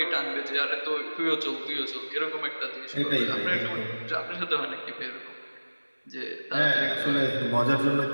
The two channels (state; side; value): inverted; both; correlation -1.00